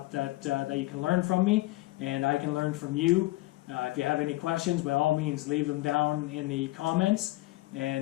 that you can learn from me, and I can learn from you. If you have any questions, by all means, leave them down in the comments,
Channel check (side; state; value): right; quieter; 19.3 dB